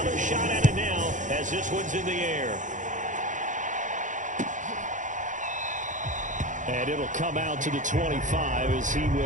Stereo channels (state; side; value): late; left; 0.37 ms